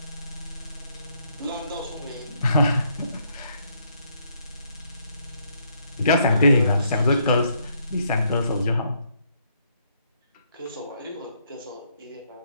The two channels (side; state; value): both; inverted; correlation -0.71